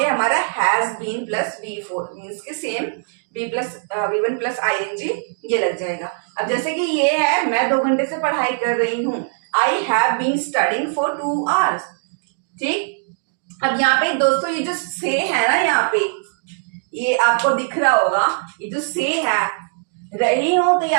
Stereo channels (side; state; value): left; silent; digital silence